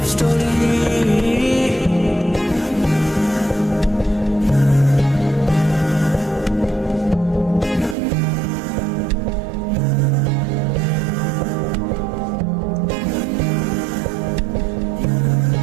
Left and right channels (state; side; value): drops out; left; at 8.0 s